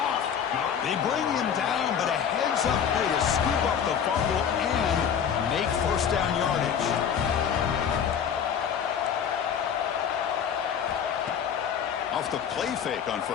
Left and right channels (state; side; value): quieter; right; 7.9 dB